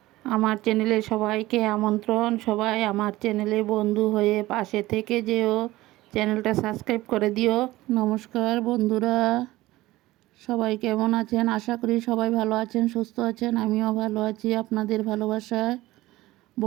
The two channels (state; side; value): quieter; left; 17.7 dB